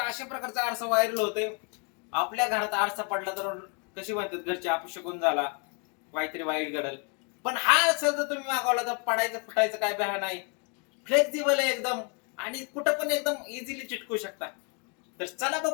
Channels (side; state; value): right; quieter; 36.1 dB